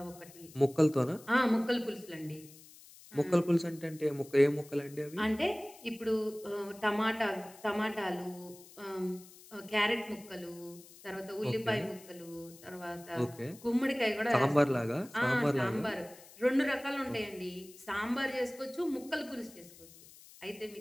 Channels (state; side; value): noise; left; hiss, 21 dB below the sound